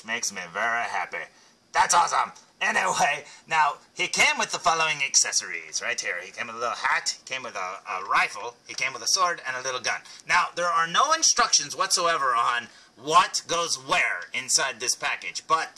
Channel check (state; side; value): identical; both; correlation 1.00